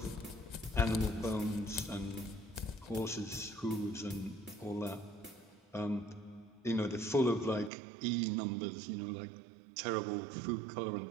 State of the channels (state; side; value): drops out; left; at 7.7 s